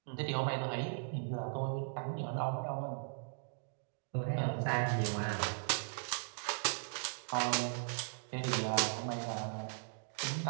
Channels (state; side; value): silent; left; digital silence